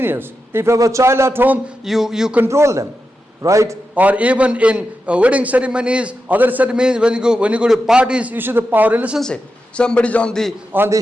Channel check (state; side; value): normal; both; correlation 0.89